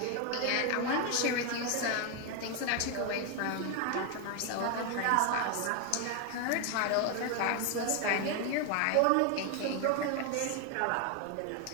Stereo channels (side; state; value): both; different; correlation 0.01